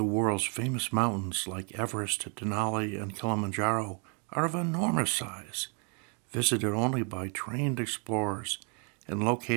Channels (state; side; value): quieter; left; 37.3 dB